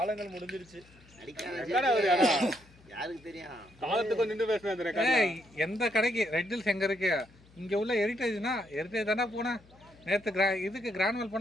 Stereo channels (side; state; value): left; noise; hum, 26 dB below the sound